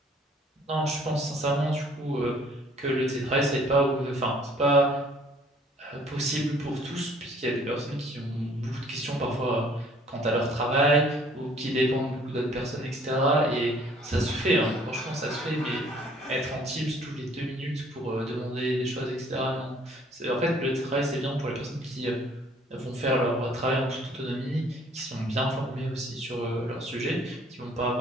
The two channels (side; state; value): both; normal; correlation 0.58